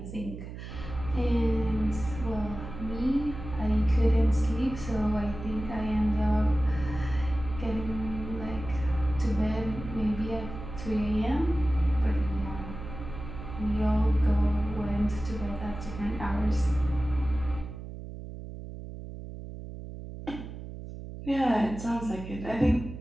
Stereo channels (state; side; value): noise; right; hum, 10 dB below the sound